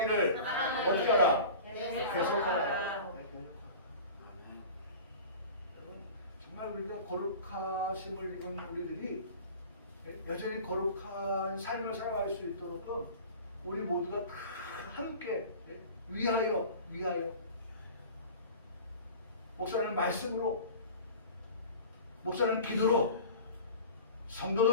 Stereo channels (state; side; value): inverted; both; correlation -0.38